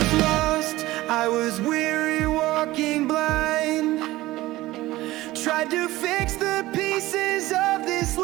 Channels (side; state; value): left; quieter; 17.6 dB